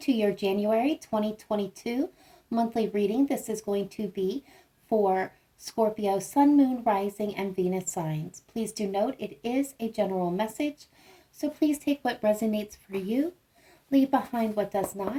to your January 2022 monthly reading. This is going to be for Scorpio, Sun, Moon, Rising, and Venus signs. Please do note it is a general message, so please take what resonates for you. Leave behind what does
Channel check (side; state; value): both; identical; correlation 1.00